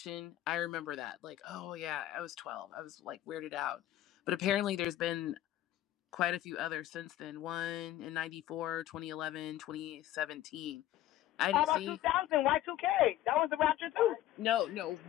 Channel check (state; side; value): quieter; right; 13.7 dB